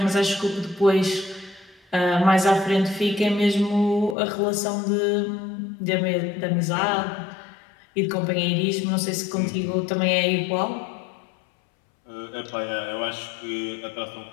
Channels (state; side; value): drops out; right; at 4.2 s